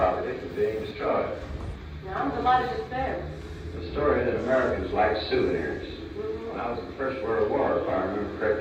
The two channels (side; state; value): both; identical; correlation 1.00